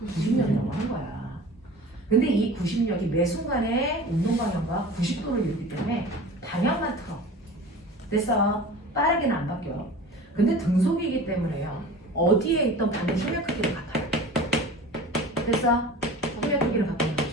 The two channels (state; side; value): normal; both; correlation 0.39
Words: 90력이라고 하는 거야. 근데 이 90력이 매 순간에 운동 방향과 90도를 이루기 때문에 방향만 틀어. 됐어. 빠르게는 안 바뀌어. 근데 등속이기 때문에요. 어디에 있던 반대 힘의 크기는 같아요. 됐어? 힘의 크기는 바뀌는